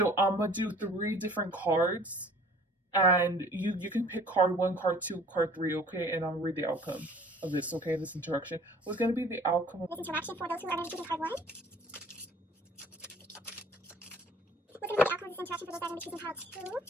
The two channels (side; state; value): both; normal; correlation 0.51